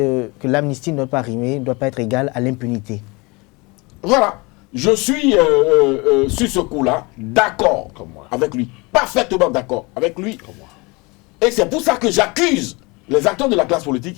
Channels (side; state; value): right; quieter; 26.4 dB